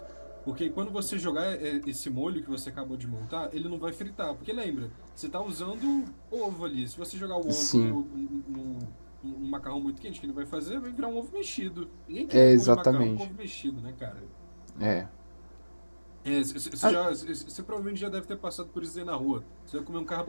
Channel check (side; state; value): both; inverted; correlation -1.00